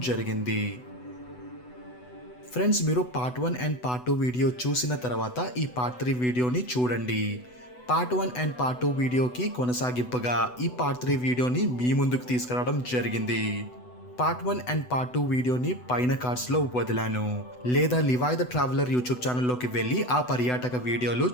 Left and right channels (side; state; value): right; late; 8.0 ms